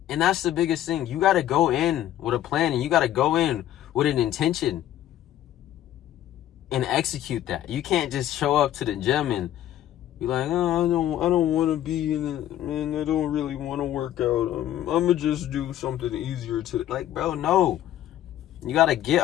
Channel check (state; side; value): quieter; right; 12.3 dB